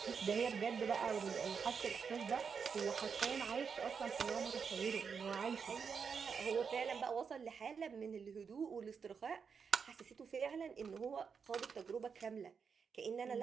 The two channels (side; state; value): left; quieter; 6.1 dB